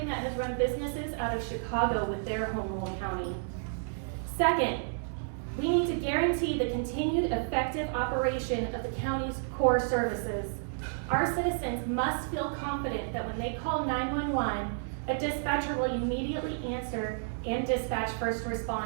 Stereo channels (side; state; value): left; silent; digital silence